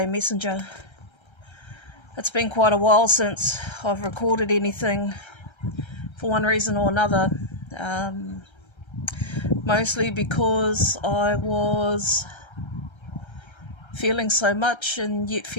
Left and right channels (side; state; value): right; late; 1.3 ms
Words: Messenger. It's been quite a while since I've recorded anything for one reason or another. Mostly because I was feeling so much and yet